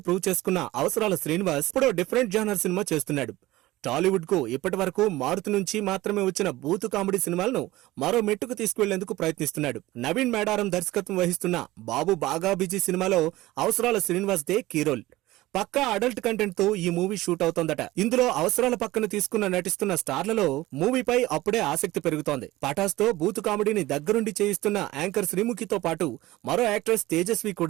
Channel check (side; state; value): left; quieter; 17.8 dB